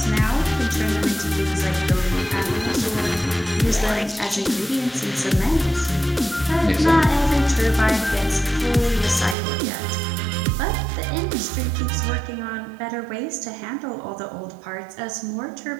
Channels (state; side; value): drops out; left; at 9.3 s